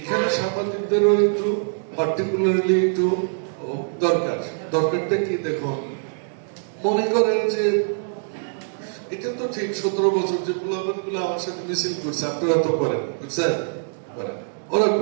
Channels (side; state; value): left; silent; digital silence